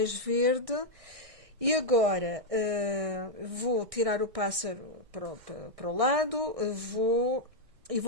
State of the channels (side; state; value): left; late; 1.6 ms